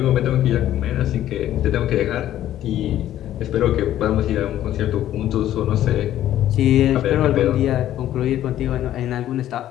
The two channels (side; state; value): right; quieter; 12.4 dB